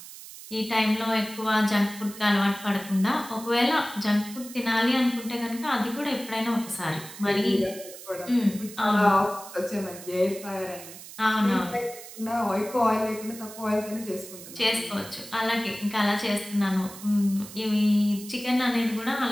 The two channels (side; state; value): right; noise; hiss, 15 dB below the sound